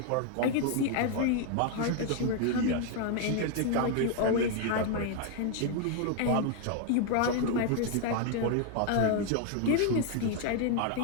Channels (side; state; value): both; different; correlation 0.00